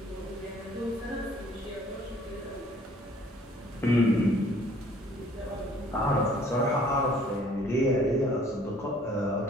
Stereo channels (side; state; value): both; normal; correlation 0.57